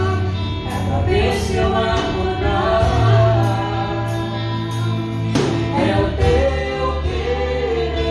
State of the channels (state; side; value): identical; both; correlation 1.00